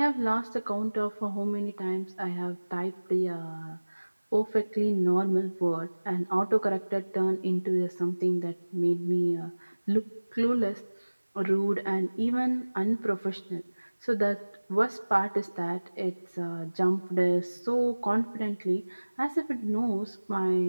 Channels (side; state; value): both; inverted; correlation -1.00